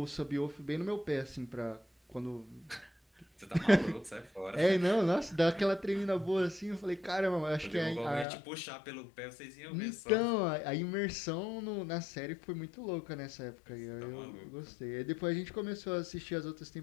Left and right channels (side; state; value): right; drops out; at 8.2 s